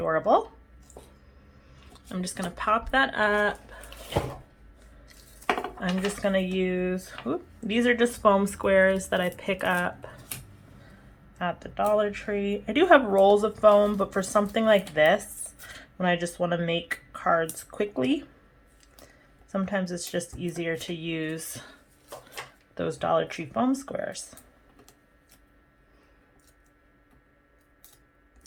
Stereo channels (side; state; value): both; identical; correlation 1.00